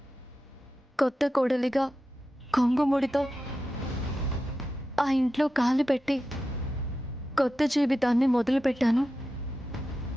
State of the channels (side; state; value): both; normal; correlation 0.91